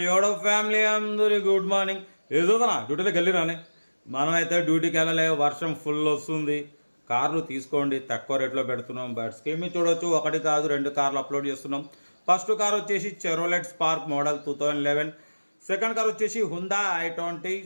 యోడో ఫ్యామిలీ అందరి గుడ్ మార్నింగ్. ఏదోదనా డ్యూటీలోకి వెళ్ళిరానే. మనమైతే డ్యూటీకి వెళ్ళలే, వర్షం ఫుల్ వస్తుంది. కార్లు తీసుకోండి, తక్కువ రేట్లో పెడుతున్నాం. బట్ స్కీమ్ చూడొచ్చు, ఒకటి కాదు 2 కార్లు అప్లోడ్ చేస్తున్నాం. ఫస్ట్ కార్ వచ్చేసి చెరోలెట్ స్పార్క్ మోడల్ 2011. సెకండ్ కార్ వచ్చేసి హుందా i20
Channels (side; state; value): both; inverted; correlation -1.00